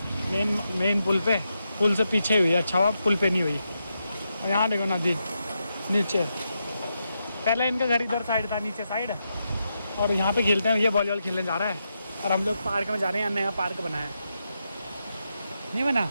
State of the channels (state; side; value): inverted; both; correlation -0.85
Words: मेन पुल से पीछे हुई है। अच्छा हुआ पुल पे नहीं हुई। और यहाँ देखो नदी नीचे, पहले इनका घर इधर साइड था, नीचे साइड, और यहाँ पे खेलते हैं। ये वॉलीबॉल खेलने जा रहा है और हम लोग पार्क में जा रहे हैं। नया पार्क बना है, नहीं बना